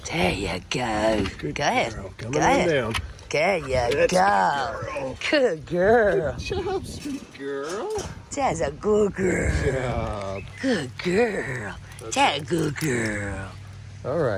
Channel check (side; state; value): both; identical; correlation 1.00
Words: There you go. Good go ahead. Girl. Come go on ahead. down. There you That's go. Good girl. Good job, sweet girl. That's a good girl. Good job. Good girl. That's a good girl. All